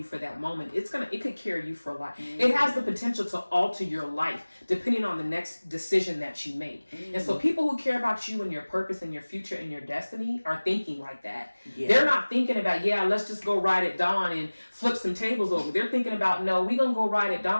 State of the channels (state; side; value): inverted; both; correlation -1.00